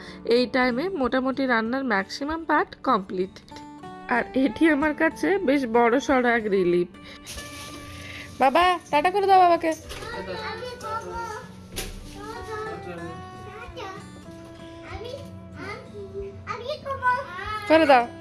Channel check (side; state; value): both; identical; correlation 1.00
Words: এই টাইমে মোটামুটি রান্নার ম্যাক্সিমাম পার্ট কমপ্লিট। আর এটি আমার কাছে বেশ বড় সড়ো এক রিলিফ। বাবা টাটা করে দাও বাবাকে। আমি করবো। আমি করবো। করে দাও।